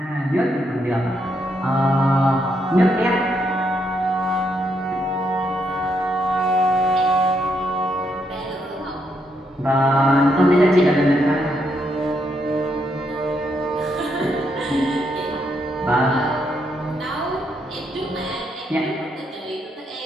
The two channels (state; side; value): normal; both; correlation 0.77